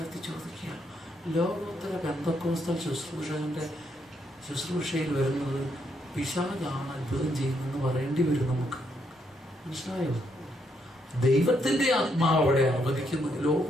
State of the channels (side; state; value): both; normal; correlation 0.76